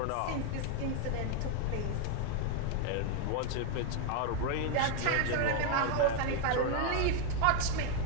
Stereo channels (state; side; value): different; both; correlation 0.00